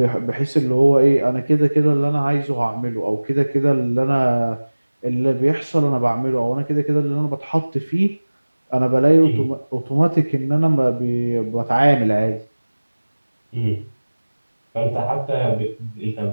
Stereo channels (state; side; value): inverted; both; correlation -1.00